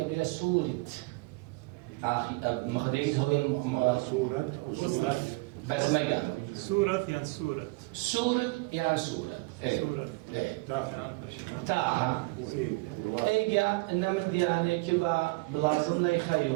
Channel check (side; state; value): left; quieter; 25.7 dB